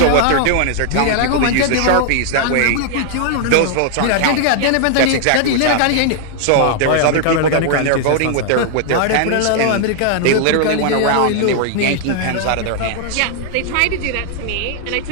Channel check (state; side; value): different; both; correlation 0.00